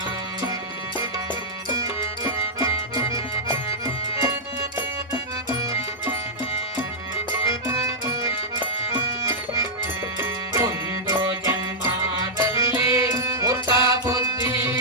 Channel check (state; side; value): normal; both; correlation -0.08